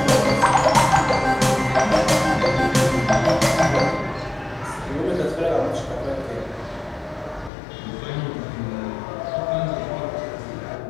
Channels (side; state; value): right; drops out; at 7.5 s